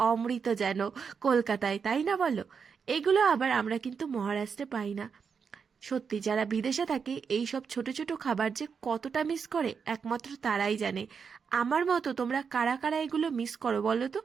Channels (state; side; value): quieter; left; 6.1 dB